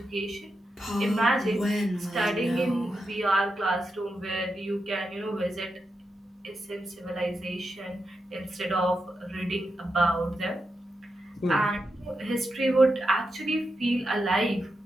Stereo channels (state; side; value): normal; both; correlation 0.87